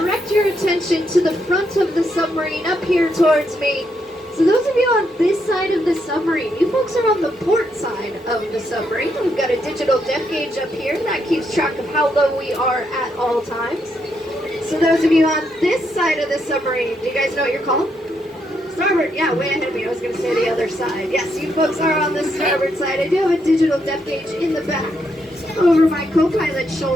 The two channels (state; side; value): normal; both; correlation 0.78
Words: your attention to the front of the submarine up here towards me. So those of you on this side of the submarine, you folks are on the port side of the submarine. We've got a digital depth gauge up here that keeps track of how low we are at all times. So those of you on this side of the submarine, do you guys know what you're called? Starboard, yeah, way ahead of me. I was going to say the other side. Yes, you folks are on the starboard side. I do have a digital depth gauge in the back over my co-pilot's